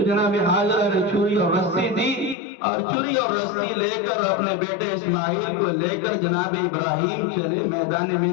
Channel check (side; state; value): right; drops out; at 2.4 s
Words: جناب ہاجرہ نے چھری اور رسی دی، اور چھری اور رسی لے کر اپنے بیٹے اسماعیل کو لے کر جناب ابراہیم چلے میدان